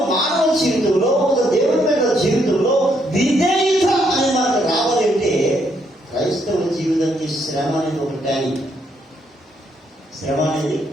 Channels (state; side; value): normal; both; correlation 0.73